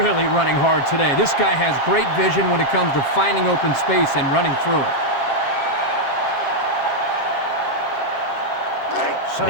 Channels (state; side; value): late; right; 7.4 ms